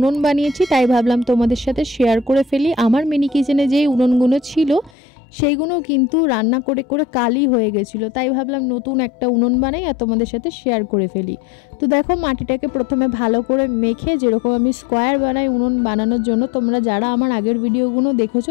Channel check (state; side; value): drops out; right; at 4.9 s